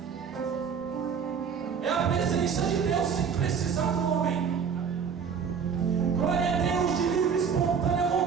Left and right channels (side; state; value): left; quieter; 6.7 dB